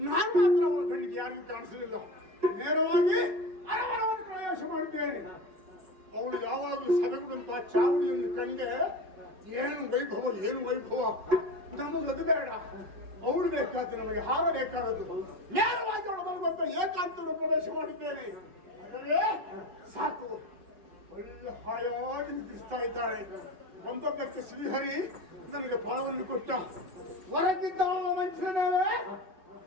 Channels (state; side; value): late; left; 5.4 ms